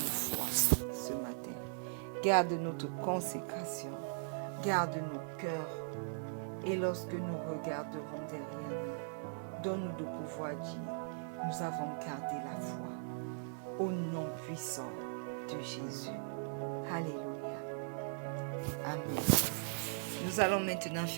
ce matin. Garde notre consécration. Garde nos cœurs. Et lorsque nous regarderons derrière nous, donne-nous de pouvoir dire, nous avons gardé la foi. Au nom puissant de Jésus. Alléluia. Amen. Nous allons maintenant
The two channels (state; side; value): silent; left; digital silence